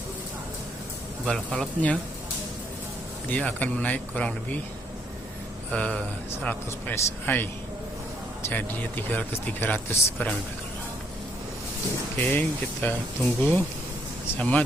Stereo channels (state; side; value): normal; both; correlation 0.70